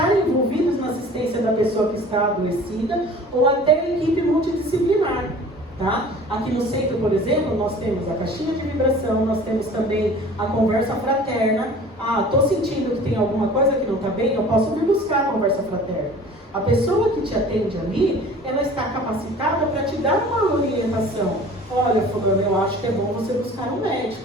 envolvidos na assistência da pessoa que está adoecida ou até equipe multidisciplinar, tá? Aqui no centro, por exemplo, nós temos a caixinha de vibração, nós temos também a conversa fraterna. Estou sentindo que tem alguma coisa que não está bem, eu posso vir buscar a conversa fraterna. A pessoa que te atende ali, ela está capacitada para te dar uma orientação. Olha, fulano, eu acho que é bom você buscar um médico.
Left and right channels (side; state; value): both; normal; correlation 0.45